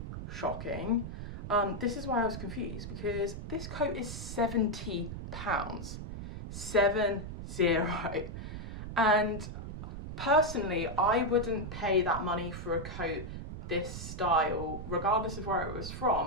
shocking. This is why I was confused, because this coat is £70. 70. And personally, I wouldn't pay that money for a coat this style, regardless of where it was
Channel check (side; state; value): right; noise; rumble, 8 dB below the sound